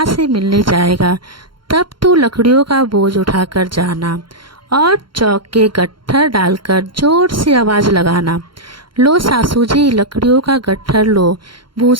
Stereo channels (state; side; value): late; left; 0.73 ms